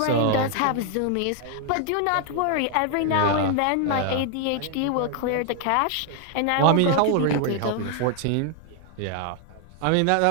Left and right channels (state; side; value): different; both; correlation 0.00